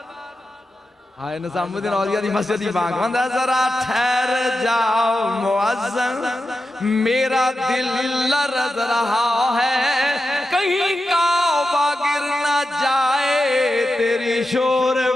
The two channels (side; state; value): both; normal; correlation 0.90